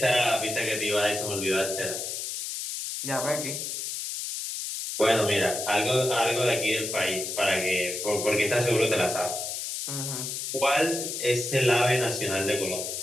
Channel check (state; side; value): noise; left; hiss, 4 dB below the sound